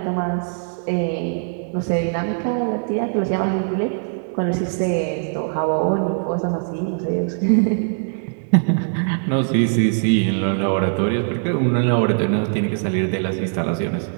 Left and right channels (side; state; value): left; silent; digital silence